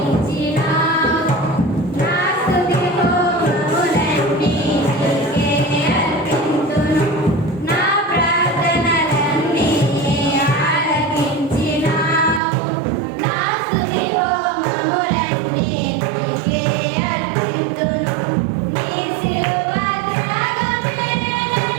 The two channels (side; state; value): left; drops out; at 12.4 s